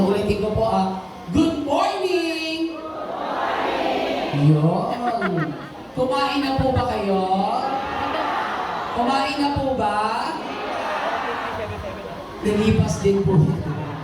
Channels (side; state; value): both; identical; correlation 1.00